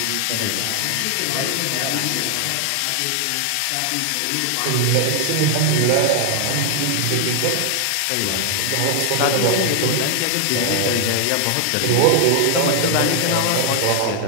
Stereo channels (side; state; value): both; different; correlation 0.00